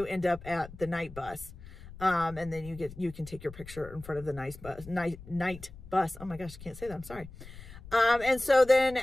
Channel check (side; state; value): left; noise; rumble, 16 dB below the sound